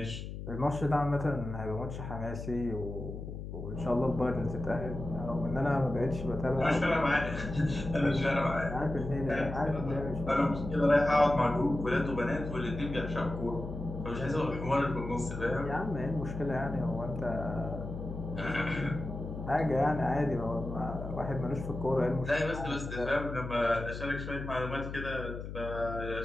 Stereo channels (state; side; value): noise; left; hum, 8 dB below the sound